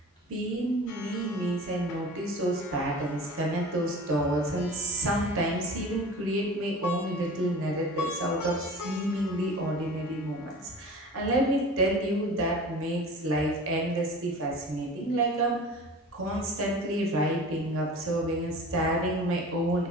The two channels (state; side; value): normal; both; correlation 0.39